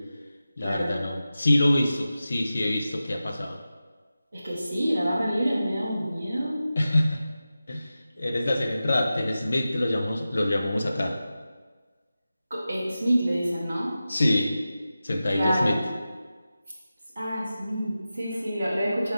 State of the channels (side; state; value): both; inverted; correlation -0.94